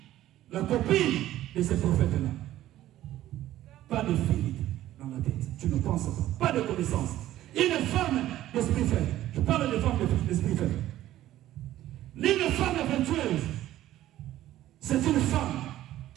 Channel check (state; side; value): quieter; left; 13.9 dB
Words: la copine de ces prophètes-là. Pas de filtre dans la tête. Tu ne penses pas. Pas de connaissance. Une femme d'esprit faible. Je parle de femme d'esprit faible. Une femme vertueuse, c'est une femme